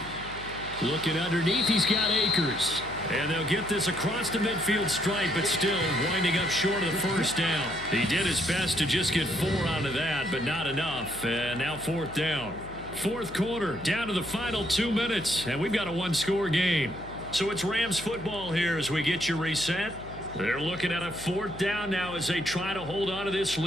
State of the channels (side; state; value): left; noise; hum, 15 dB below the sound